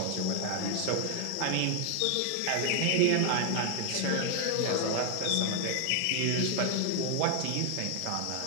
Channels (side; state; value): both; different; correlation 0.00